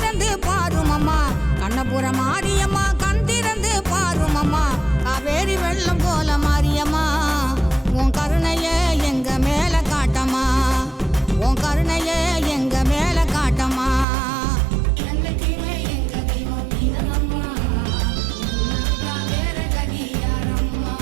பாருமம்மா, கண்ணபுர மாரியம்மா கண் திறந்து பாருமம்மா, காவேரி வெள்ளம் போல மாரியம்மா, உன் கருணைய எங்க மேல காட்டம்மா, உன் கருணைய எங்க மேல காட்டம்மா. என்னைக்குமே எங்க தெய்வம் நீதானம்மா. உன்னை விட்டா வேற கதி யாரம்மா.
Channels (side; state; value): left; drops out; at 14.1 s